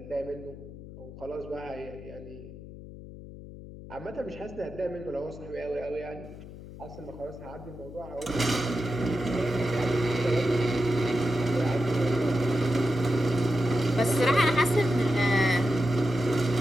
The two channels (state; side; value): noise; left; hum, 14 dB below the sound